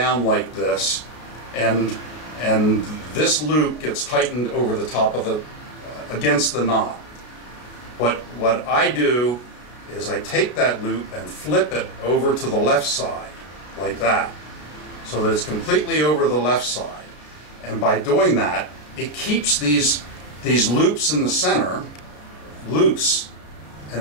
like this, and this loop gets tightened over the top of the, against the knot. What I do is I take that loop and flip it over to the left side, like that, so that it's completely over the left side. And by doing that, it keeps these loops in the center loose,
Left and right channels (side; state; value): right; late; 33 ms